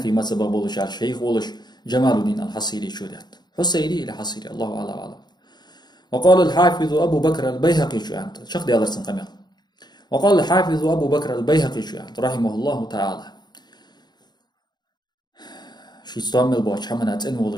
مذهب والشار شيخ ولش جمال الدين الحصيري شودات حصيري إلى حصيري الله أعلم. وقال الحافظ أبو بكر البيهقي شوانت شخ دي أدرسن قميل. وقال الحافظ أبو بكر البيهقي شوانت رحمه الله تعالى شي استعمل بوش حمنات إن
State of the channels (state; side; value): late; right; 0.21 ms